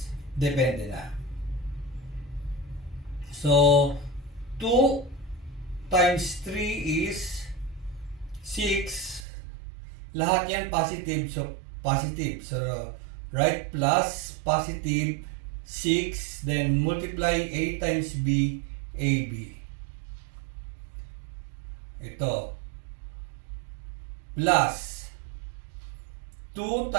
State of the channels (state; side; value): drops out; left; at 9.2 s